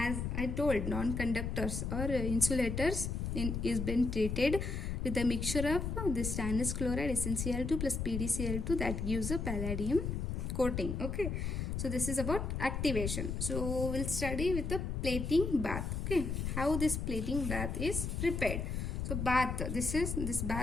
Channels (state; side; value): noise; left; rumble, 2 dB below the sound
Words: I told, non-conductors or insulators is been treated with a mixture of this stannous chloride SnCl2 plus PdCl2 that gives a palladium coating. Okay, so this is about activation. So we'll study with the plating bath. Okay, how this plating bath is prepared. So bath, this